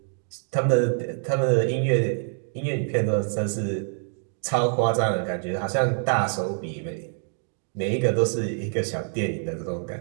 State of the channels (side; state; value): left; silent; 56 dB below the other